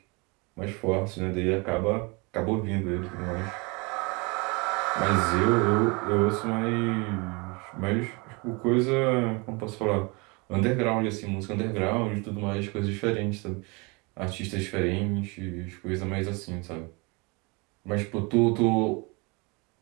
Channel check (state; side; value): quieter; left; 28.7 dB